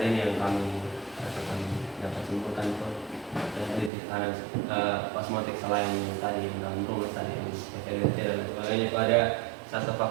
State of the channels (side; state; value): left; drops out; at 3.9 s